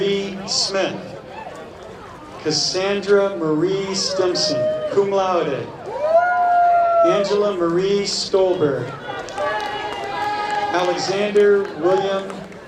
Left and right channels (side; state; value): both; identical; correlation 1.00